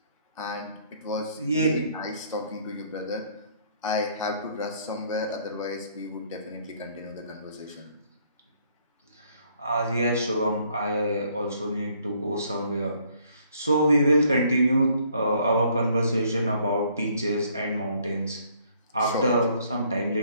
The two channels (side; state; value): both; inverted; correlation -0.64